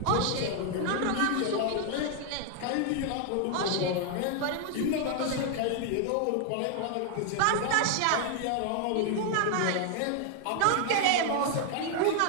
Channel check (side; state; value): both; different; correlation 0.00